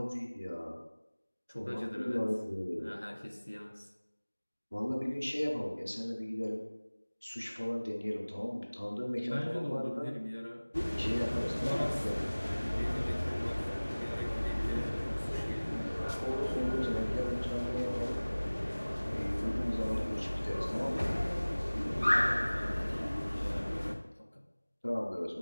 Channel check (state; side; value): inverted; both; correlation -1.00